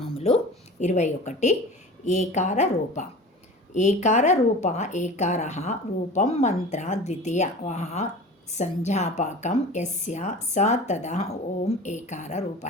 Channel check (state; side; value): normal; both; correlation 0.37